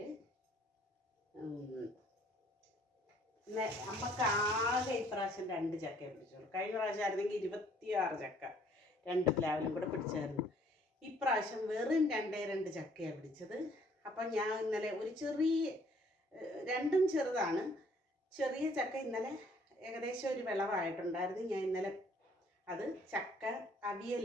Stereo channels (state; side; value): normal; both; correlation 0.61